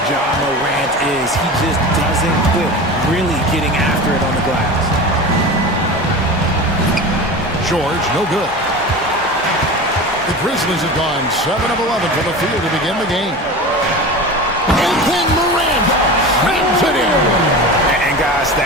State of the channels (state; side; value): normal; both; correlation 0.31